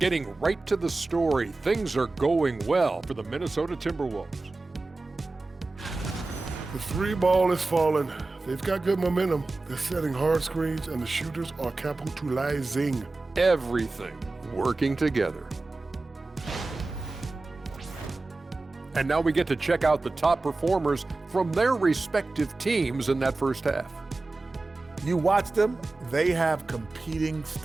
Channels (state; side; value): quieter; left; 3.3 dB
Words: Getting right to the story, things are going well for the Minnesota Timberwolves. The 3 ball is falling. They've got good momentum. They're setting hard screens, and the shooters are capitalizing. Everything working together. And now we get to check out the top performers from their respective teams in that first half. You watch them, they have competing